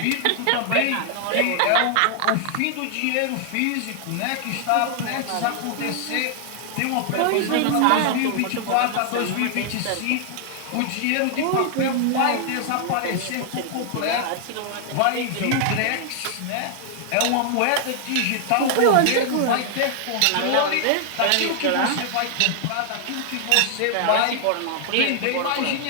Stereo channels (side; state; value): both; different; correlation 0.00